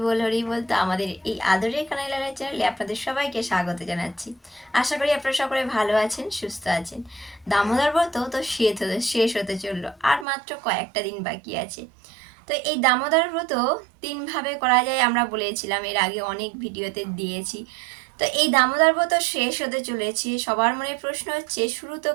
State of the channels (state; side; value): drops out; left; at 10.2 s